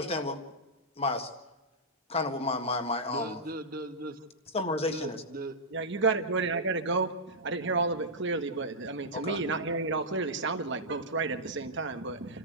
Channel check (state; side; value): normal; both; correlation -0.11